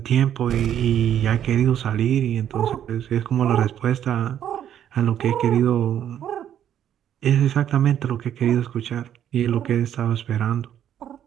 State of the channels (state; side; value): quieter; left; 10.2 dB